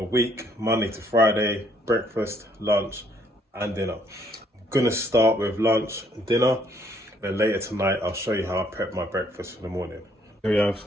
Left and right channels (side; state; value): both; normal; correlation 0.67